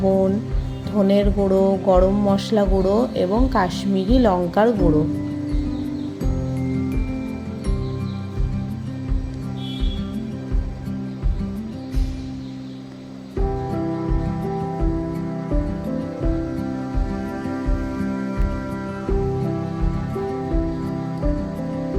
ধনের গুঁড়ো, গরম মশলা গুঁড়ো এবং কাশ্মীরি লঙ্কার গুঁড়ো।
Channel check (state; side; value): identical; both; correlation 1.00